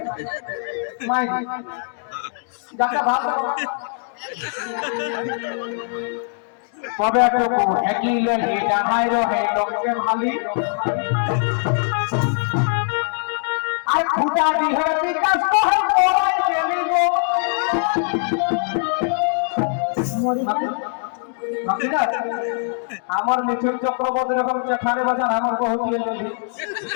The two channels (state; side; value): silent; right; 64 dB below the other